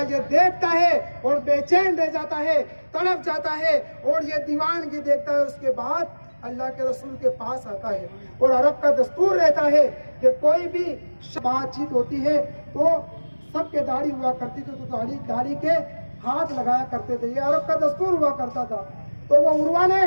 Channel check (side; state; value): both; inverted; correlation -1.00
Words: ये देखता है और बेचैन रह जाता है, तड़प जाता है और ये दीवानगी देखता है। उसके बाद अल्लाह के रसूल के पास आता है। और अरब का दस्तूर रहता है कि कोई भी बातचीत होती है तो सबके दाढ़ी हुआ करती थी, तो दाढ़ी के हाथ लगाया करते थे। ये अरब का दस्तूर हुआ करता था। तो वो उर्वा ने